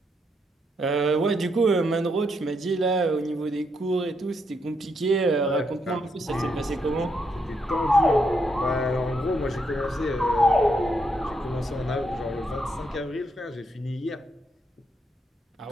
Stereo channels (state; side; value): normal; both; correlation 0.78